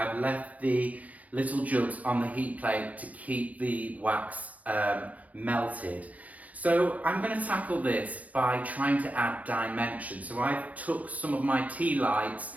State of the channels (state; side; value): late; left; 0.072 ms